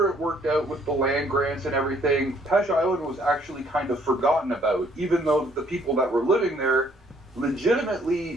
it worked out with the land grants and everything, Pesh Island was actually kind of forgotten about, even though the people that were living there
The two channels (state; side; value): normal; both; correlation 0.64